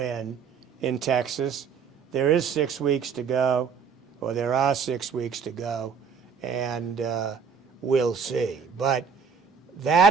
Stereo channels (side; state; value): left; quieter; 6.3 dB